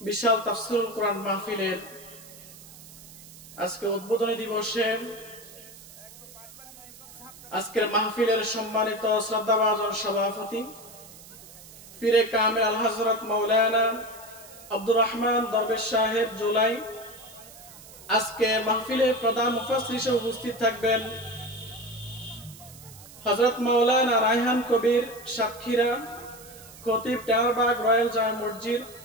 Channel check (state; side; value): noise; right; hiss, 19 dB below the sound